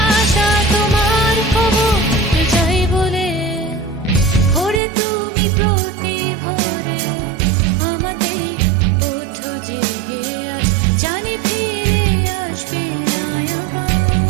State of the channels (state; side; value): drops out; left; at 4.8 s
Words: তোমার খবর যাই বলে। ওরে তুমি প্রতি ভোরে আমাকে ওঠো জেগে, আজ জানি ফিরে আসবে না আবার।